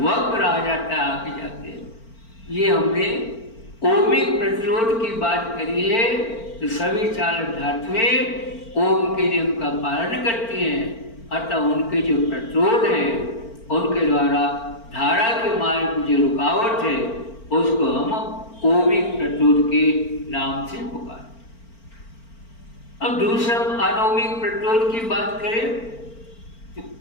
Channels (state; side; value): late; right; 4.4 ms